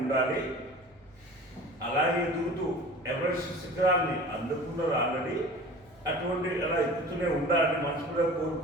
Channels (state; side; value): normal; both; correlation 0.40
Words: అలాగే ఎదుగుతూ ఎవరెస్ట్ శిఖరాన్ని అందుకున్నారు ఆల్రెడీ. అటువంటి అలా ఎక్కుతూనే ఉండాలని మనసులో